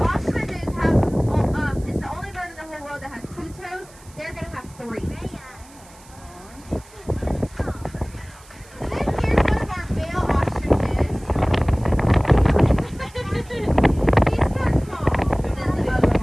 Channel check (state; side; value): noise; right; hiss, 24 dB below the sound